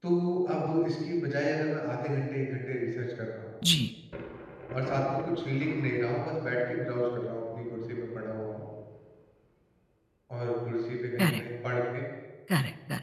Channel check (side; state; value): both; identical; correlation 1.00